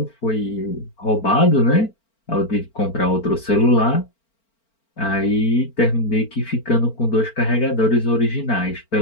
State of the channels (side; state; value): right; late; 4.4 ms